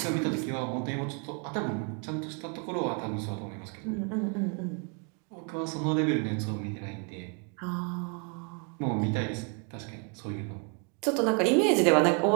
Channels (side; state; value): left; quieter; 35.7 dB